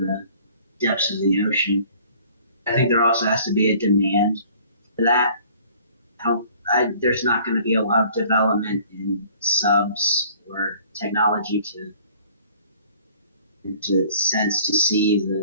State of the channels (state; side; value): inverted; both; correlation -0.53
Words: depths of the ocean. I think there also has to be a demand for that. There's not going to be a lot of development in subs or technology to see